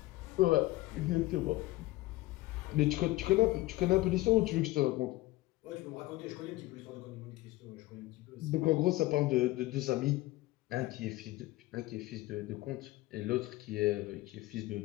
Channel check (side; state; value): right; quieter; 18.5 dB